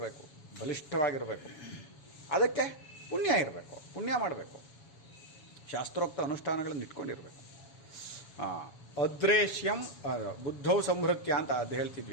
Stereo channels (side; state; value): right; late; 7.2 ms